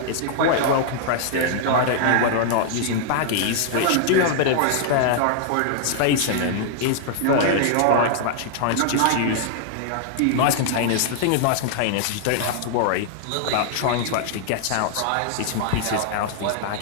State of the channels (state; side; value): different; both; correlation -0.01